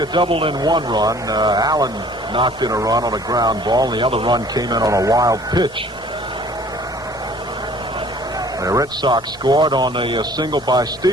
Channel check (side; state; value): both; normal; correlation 0.53